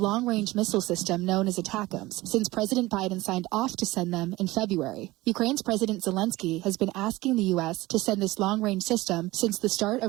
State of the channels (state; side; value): quieter; left; 19.4 dB